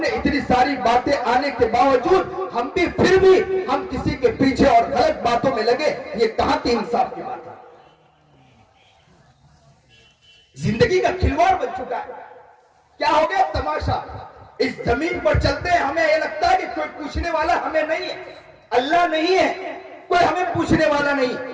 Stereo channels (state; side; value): identical; both; correlation 1.00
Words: इतनी सारी बातें आने के बावजूद हम भी फिर भी हम किसी के पीछे और गलत बातों में लगे, ये कहां की इंसाफ की बात है? जिंदगी का खिलवाड़ बन चुका है। क्या हो गया तमाशा? इस जमीन पर चलते हैं, हमें यह लगता है कि कोई पूछने वाला हमें नहीं है, अल्लाह नहीं है, कोई हमें पूछने वाला नहीं,